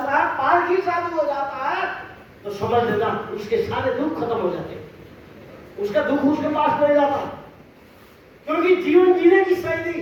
है, पारसी साधु हो जाता है, तो समझ लेना उसके सारे दुख खत्म हो जाते, उसका दुख उसके पास नहीं जाता। क्योंकि जीवन जीने की शैली,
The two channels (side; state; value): both; identical; correlation 1.00